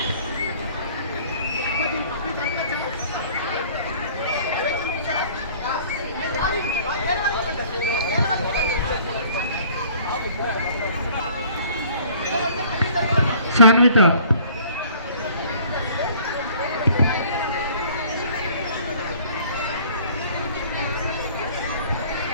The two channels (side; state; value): both; inverted; correlation -0.53